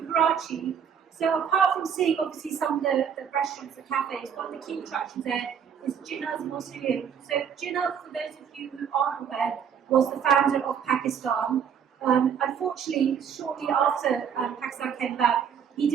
Karachi. So apart from seeing obviously some of the restaurants, the cafes, one of the key attractions there is Jinnah's Mausoleum. So Jinnah, for those of you who aren't aware, was the founder of Pakistan. Unfortunately, shortly after Pakistan came about, he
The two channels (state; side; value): quieter; left; 7.8 dB